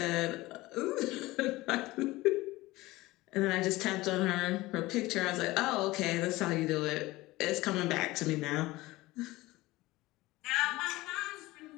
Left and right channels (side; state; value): right; quieter; 19.4 dB